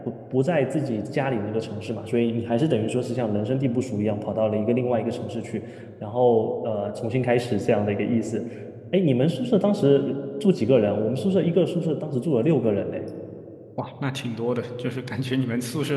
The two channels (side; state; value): both; identical; correlation 1.00